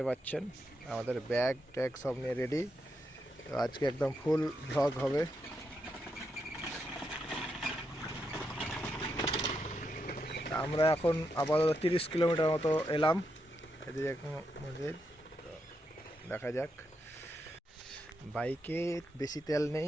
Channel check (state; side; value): normal; both; correlation 0.83